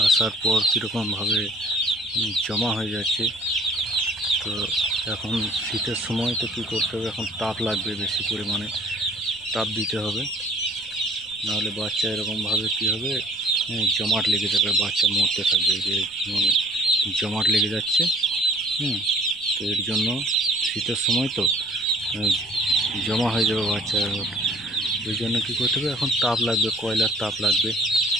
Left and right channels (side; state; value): right; noise; rumble, 28 dB below the sound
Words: আসার পর কীরকমভাবে জমা হয়ে যাচ্ছে। তো এখন শীতের সময় তো কী করতে হবে, এখন তাপ লাগবে, বেশি পরিমাণে তাপ দিতে হবে, নাহলে বাচ্চা এরকমভাবে কী হবে, জমাট লেগে যাবে, বাচ্চা মরতে থাকবে। যে জমাট লেগে যাচ্ছে। তো এর জন্য শীতের সময় তো জমা হয়ে যাবে বাচ্চা। ওই জন্য কী করতে হবে, এখন তাপ লাগবে, কয়লার তাপ লাগবে।